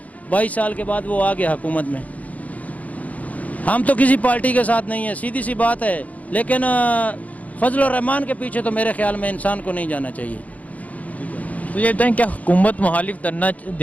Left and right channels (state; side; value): late; right; 0.071 ms